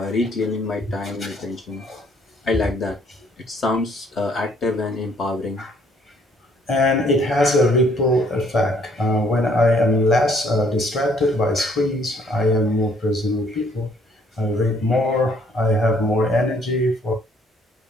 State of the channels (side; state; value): both; normal; correlation 0.63